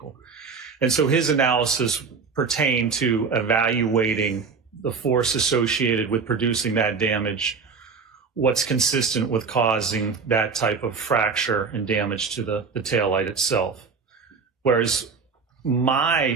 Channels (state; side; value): quieter; left; 5.2 dB